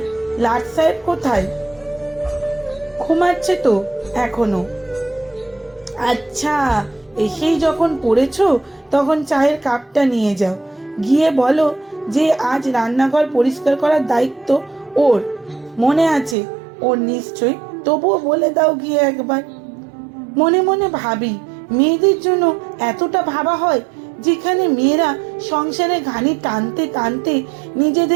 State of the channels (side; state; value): left; drops out; at 16.4 s